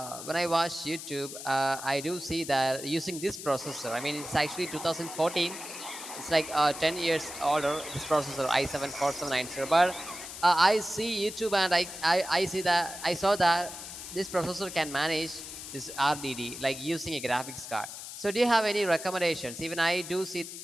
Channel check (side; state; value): left; noise; hiss, 10 dB below the sound